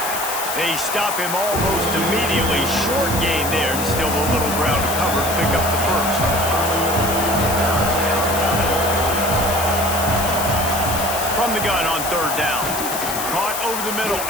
They stop him almost immediately. Short gain there, and still a little ground to cover. Pick up the first. From the gun on 3rd down. Caught over the middle,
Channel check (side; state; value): left; noise; hiss, 5 dB below the sound